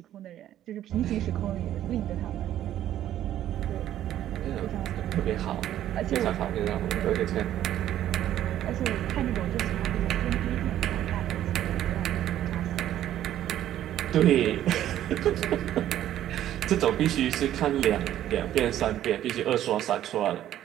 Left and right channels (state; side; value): quieter; left; 12.0 dB